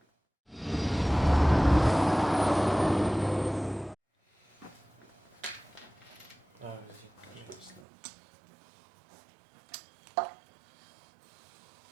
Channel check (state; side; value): drops out; left; at 7.9 s